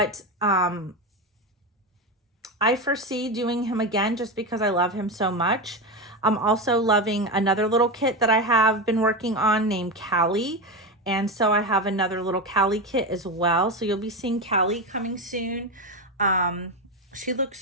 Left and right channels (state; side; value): normal; both; correlation 0.16